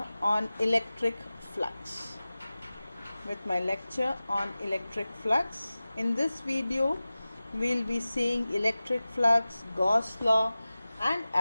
on electric flux. In this video, we'll be seeing electric flux, Gauss law, and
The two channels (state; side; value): inverted; both; correlation -0.97